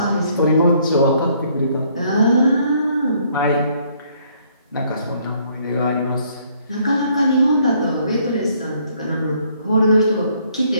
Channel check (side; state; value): both; inverted; correlation -0.66